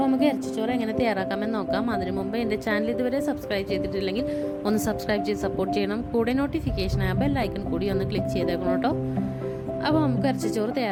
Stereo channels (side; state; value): both; identical; correlation 1.00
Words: നമുക്ക് ഇറച്ചിച്ചോറ് എങ്ങനെ തയ്യാറാക്കാമെന്ന് നോക്കാം. അതിനു മുമ്പ് എൻ്റെ ചാനൽ ഇതുവരെ സബ്സ്ക്രൈബ് ചെയ്തിട്ടില്ലെങ്കിൽ ഒന്ന് സബ്സ്ക്രൈബ് ചെയ്ത് സപ്പോർട്ട് ചെയ്യണം. കൂടെ നോട്ടിഫിക്കേഷൻ ആ ബെൽ ഐക്കൺ കൂടി ഒന്ന് ക്ലിക്ക് ചെയ്തേക്കണം കേട്ടോ. അപ്പോൾ നമുക്ക് ഇറച്ചിച്ചോറ്